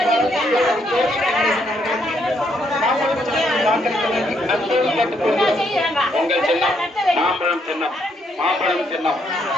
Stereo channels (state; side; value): normal; both; correlation 0.73